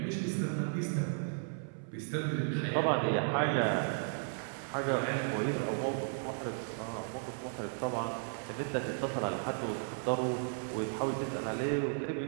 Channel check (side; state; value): left; silent; 55 dB below the other